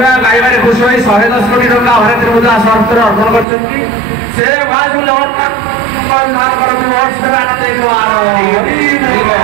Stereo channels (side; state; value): left; drops out; at 3.5 s